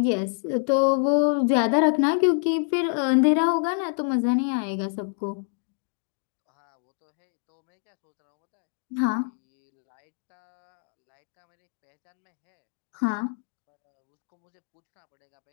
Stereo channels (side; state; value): right; silent; 60 dB below the other